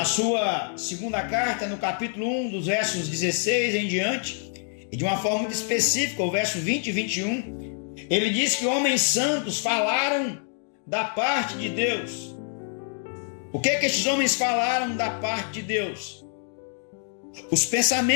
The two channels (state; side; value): silent; right; 56 dB below the other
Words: sua segunda carta, no capítulo 1, dos versos 16 em diante, e de uma forma muito específica, o verso 20 e 21, ele diz que homens santos falaram da parte de Deus. O que estes homens falaram da parte de Deus? Os